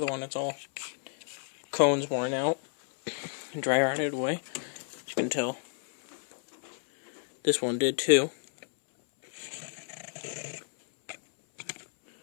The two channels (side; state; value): right; silent; 57 dB below the other